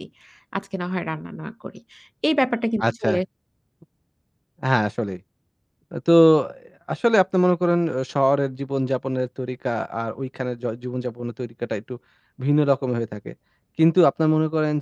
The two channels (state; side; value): identical; both; correlation 1.00